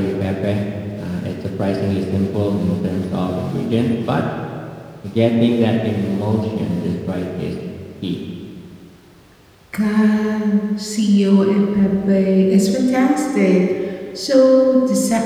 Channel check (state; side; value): identical; both; correlation 1.00